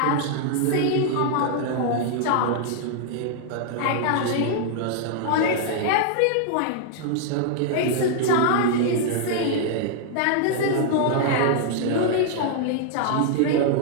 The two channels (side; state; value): both; different; correlation -0.01